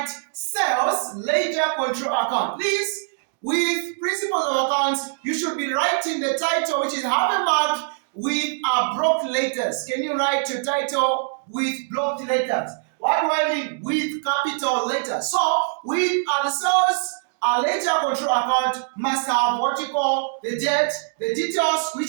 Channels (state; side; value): silent; left; digital silence